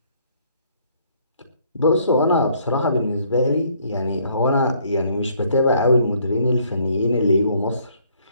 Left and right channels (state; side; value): inverted; both; correlation -0.65